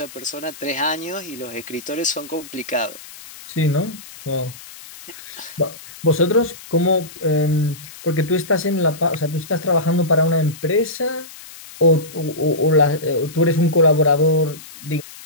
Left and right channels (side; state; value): left; noise; hiss, 17 dB below the sound